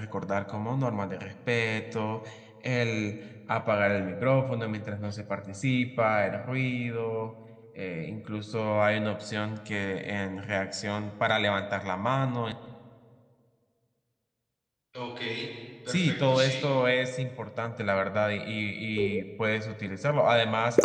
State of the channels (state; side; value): identical; both; correlation 1.00